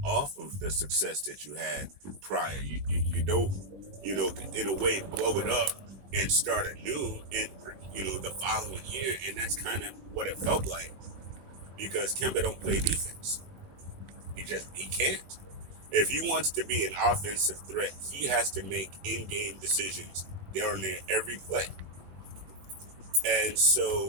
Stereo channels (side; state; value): left; late; 21 ms